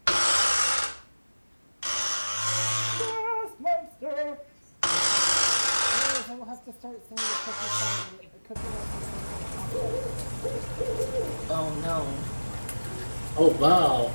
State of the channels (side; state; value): both; inverted; correlation -1.00